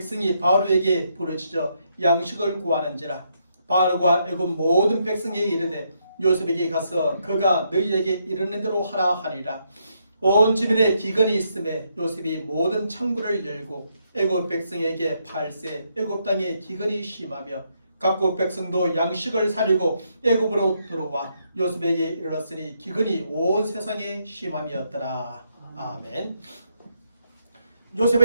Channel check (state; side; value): inverted; both; correlation -0.77